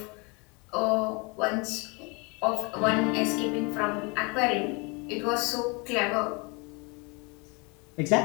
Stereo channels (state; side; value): quieter; right; 29.8 dB